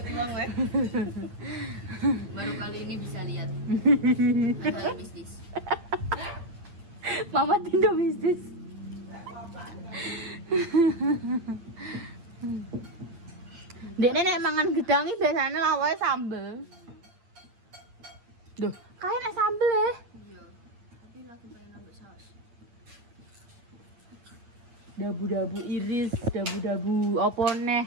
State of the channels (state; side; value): late; left; 9.0 ms